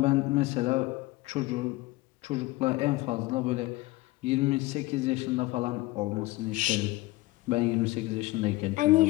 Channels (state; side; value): quieter; right; 20.1 dB